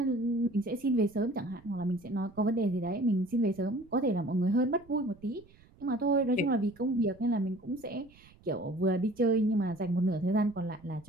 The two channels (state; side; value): noise; right; rumble, 26 dB below the sound